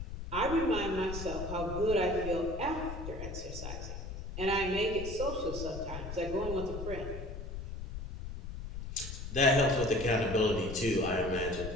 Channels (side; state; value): left; noise; rumble, 8 dB below the sound